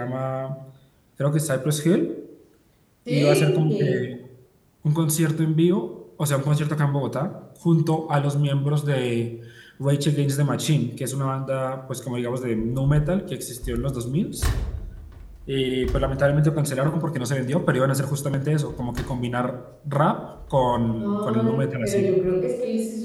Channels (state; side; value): identical; both; correlation 1.00